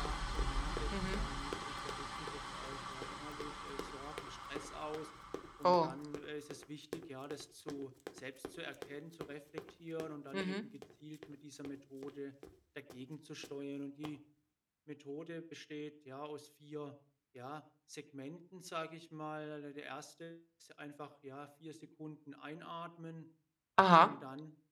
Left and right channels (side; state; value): both; identical; correlation 1.00